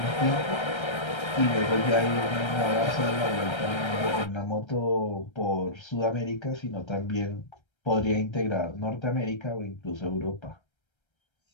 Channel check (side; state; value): right; late; 1.3 ms